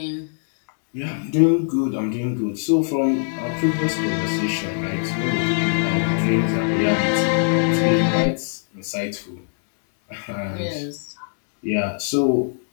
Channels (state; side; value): silent; right; digital silence